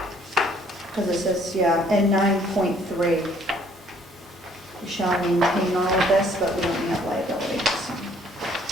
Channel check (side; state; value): both; normal; correlation 0.61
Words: Because it says, yeah, in 9.3, we shall maintain all of this, but we don't have liability, so.